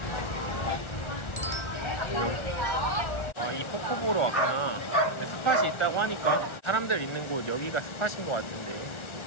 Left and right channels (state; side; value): late; right; 1.3 ms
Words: 이 폭포 보러 왔구나. 스팟이 있다고 하니까 사람들 있는 곳 여기가 스팟인 것 같은데.